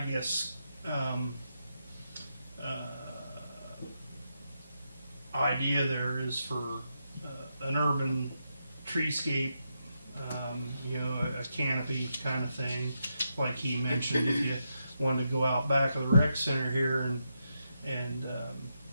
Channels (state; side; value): inverted; both; correlation -0.83